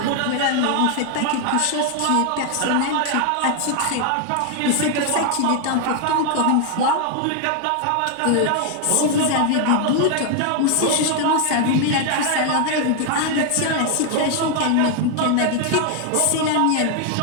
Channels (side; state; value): both; different; correlation 0.01